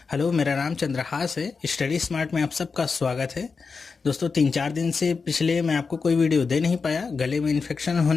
हेलो, मेरा नाम चंद्रहास है। स्टडी स्मार्ट में आप सबका स्वागत है। दोस्तों, 3-4 दिन से पिछले मैं आपको कोई वीडियो दे नहीं पाया। गले में इन्फेक्शन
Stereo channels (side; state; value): right; quieter; 4.9 dB